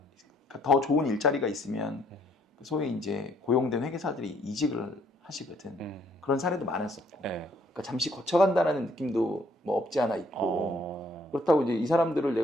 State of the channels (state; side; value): normal; both; correlation 0.66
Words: 더 좋은 일자리가 있으면 소위 이제 고용된 회계사들이 이직을 하시거든. 그런 사례도 많았었고. 그러니까 잠시 거쳐간다는 느낌도 뭐 없지 않아 있고. 그렇다고 이제 이 사람들을